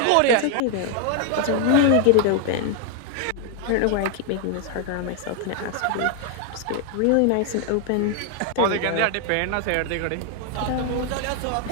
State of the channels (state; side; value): different; both; correlation 0.00